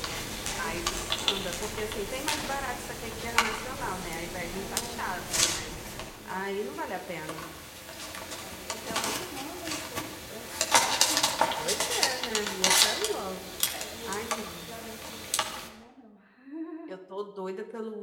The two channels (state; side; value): identical; both; correlation 1.00